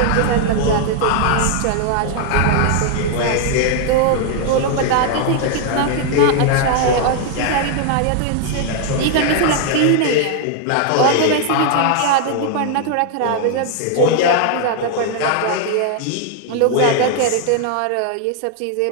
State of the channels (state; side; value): different; both; correlation 0.00